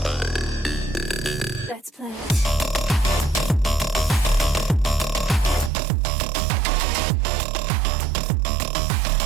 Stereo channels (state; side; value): drops out; left; at 5.7 s